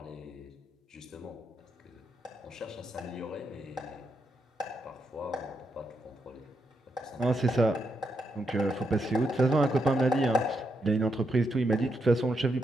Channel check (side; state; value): both; normal; correlation 0.82